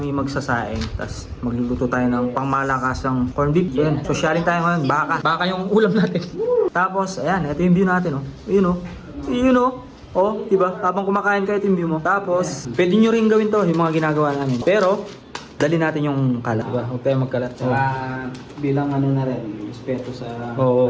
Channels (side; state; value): both; identical; correlation 1.00